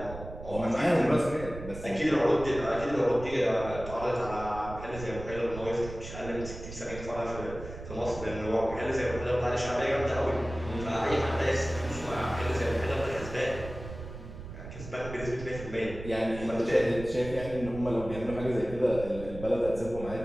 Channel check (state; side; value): noise; right; rumble, 11 dB below the sound